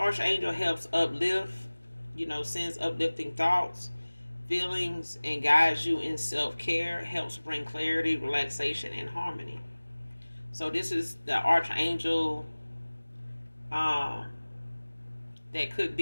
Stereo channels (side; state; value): both; inverted; correlation -1.00